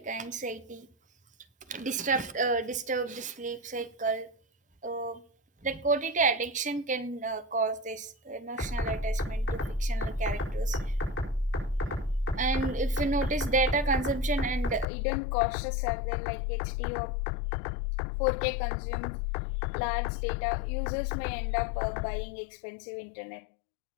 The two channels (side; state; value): right; drops out; at 14.9 s